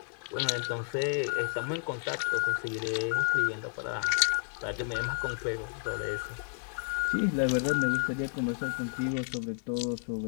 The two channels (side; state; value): right; silent; 57 dB below the other